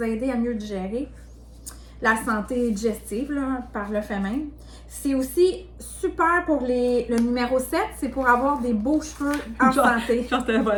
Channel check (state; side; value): identical; both; correlation 1.00